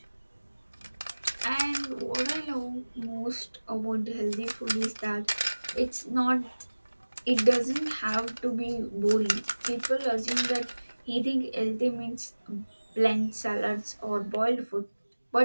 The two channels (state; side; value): inverted; both; correlation -1.00